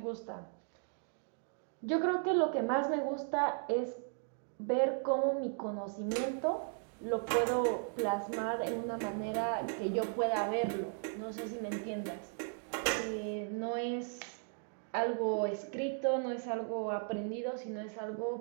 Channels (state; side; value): silent; left; 53 dB below the other